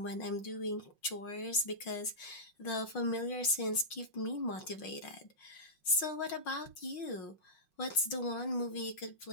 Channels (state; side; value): late; right; 5.6 ms